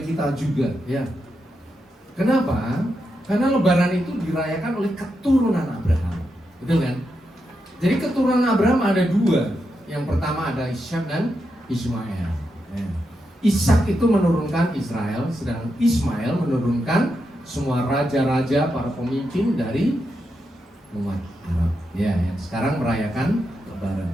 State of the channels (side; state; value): both; normal; correlation 0.85